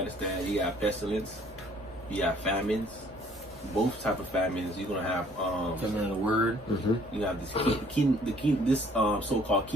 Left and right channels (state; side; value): normal; both; correlation 0.59